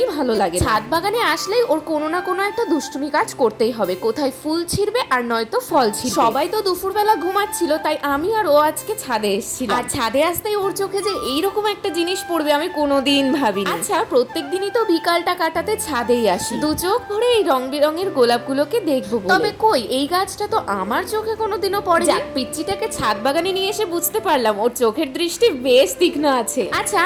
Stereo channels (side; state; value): both; identical; correlation 1.00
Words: ভালো লাগে। ছাদ বাগানে আসলেই ওর কোনো না কোনো একটা দুষ্টুমি কাজ করতেই হবে, কোথায় ফুল ছিঁড়বে আর নয়তো ফল ছিঁড়বে। সবাই তো দুপুরবেলা ঘুমাচ্ছিল, তাই আমি আর ও আজকে ছাদে এসেছিলাম। আর ছাদে আসতেই ওর চোখে যে এইরকম একটা জিনিস পড়বে আমি কোনোদিন ভাবিনি। আচ্ছা, প্রত্যেক দিনই তো বিকালটা কাটাতে ছাদেই আসি, দু চোখ ভরে এই রং বেরঙের গোলাপগুলোকে দেখবো বলে। তবে কই, এই গাছটা তো আমার চোখে কোনোদিনও পড়ে। যাক, পিচ্চিটাকে ছাদ বাগানে নিয়ে এসে বুঝতে পারলাম ওর চোখের দৃষ্টি বেশ তীক্ষ্ণ আছে। আচ্ছা,